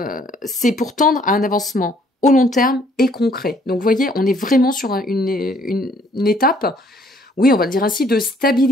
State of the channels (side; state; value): both; normal; correlation 0.63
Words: c'est pour tendre à un avancement au long terme et concret. Donc vous voyez, on est vraiment sur une étape, oui, on va le dire ainsi, de